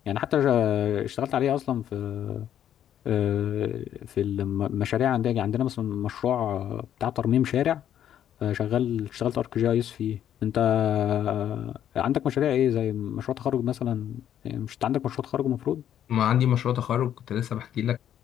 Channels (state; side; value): quieter; right; 10.4 dB